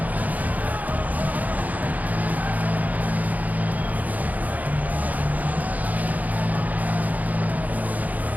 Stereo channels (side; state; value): left; late; 0.079 ms